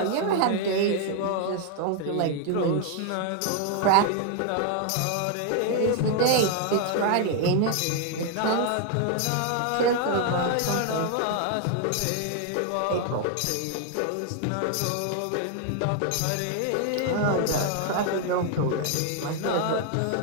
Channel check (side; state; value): both; different; correlation 0.00